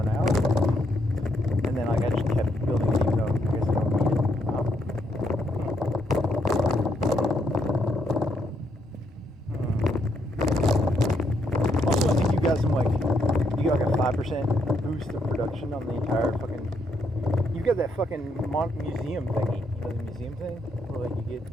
out. And then like I just kept building it even though I guess I don't need it. Also, I think you got some like, you got like a 5% boost of production on the entire fucking, you got that fucking museum thingy, you know, the museum thing? Where like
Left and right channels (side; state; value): both; normal; correlation 0.75